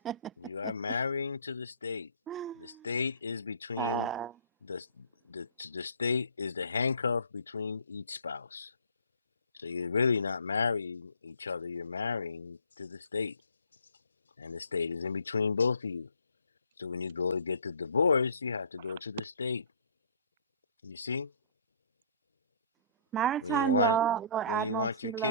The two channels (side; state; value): both; inverted; correlation -0.52